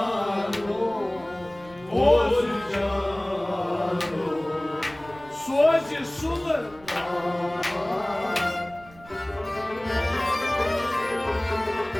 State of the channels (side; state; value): right; noise; rumble, 23 dB below the sound